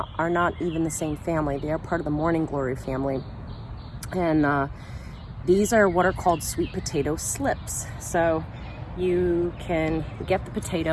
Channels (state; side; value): identical; both; correlation 1.00